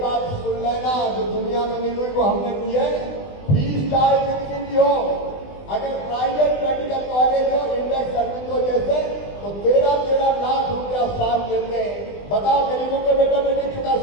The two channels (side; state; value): right; late; 20 ms